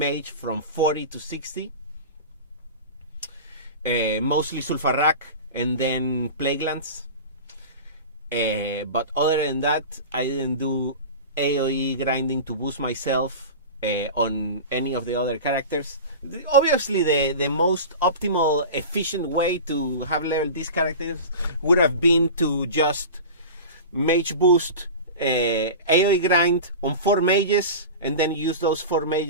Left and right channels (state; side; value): inverted; both; correlation -0.31